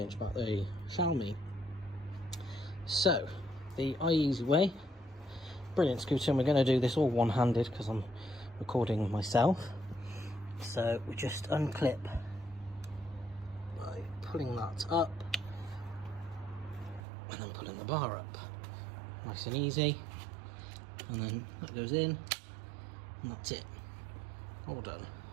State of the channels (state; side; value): drops out; left; at 17.0 s